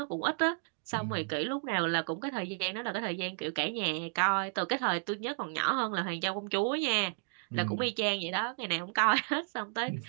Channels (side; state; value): left; silent; 55 dB below the other